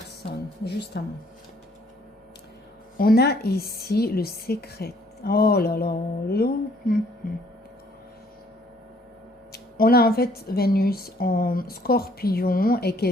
justement. On a ici le secret. Oh là là. On a en fait Vénus en Scorpion et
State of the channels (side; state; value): both; normal; correlation 0.62